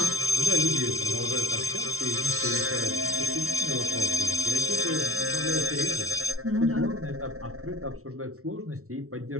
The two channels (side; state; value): left; late; 0.63 ms